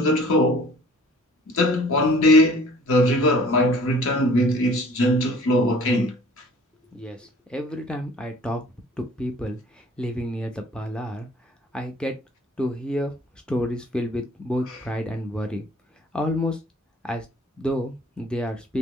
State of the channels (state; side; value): normal; both; correlation 0.51